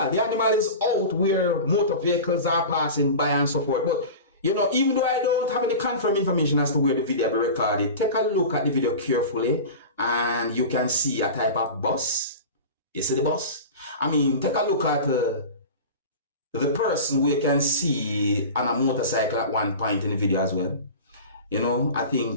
The animal is out where motor vehicles are passing by and so forth. But, you know, even though I don't have any confirmed information as to where the video will be recorded, take a look at the video carefully and you can see a type of bus. You see the bus? I mean, take a look at the person we can see on a motorcycle at one point in the video as well. You know, I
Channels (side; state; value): both; inverted; correlation -0.32